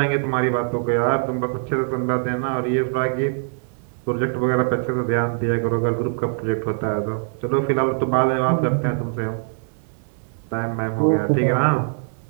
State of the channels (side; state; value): left; silent; digital silence